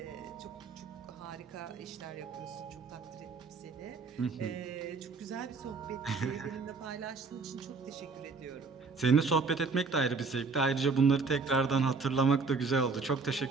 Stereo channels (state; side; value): quieter; left; 4.4 dB